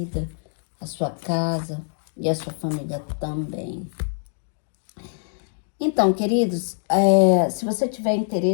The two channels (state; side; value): silent; right; 58 dB below the other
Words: a sua casa e a sua família também. Então, queridos, se você tiver